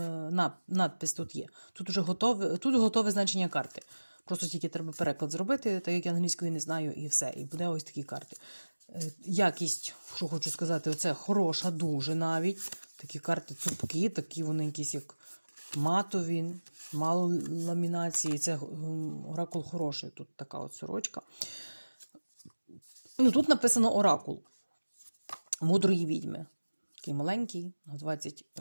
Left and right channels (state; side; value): inverted; both; correlation -1.00